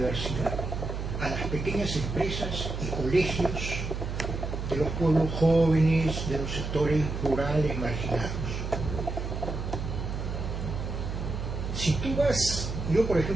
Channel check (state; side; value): noise; right; hum, 4 dB below the sound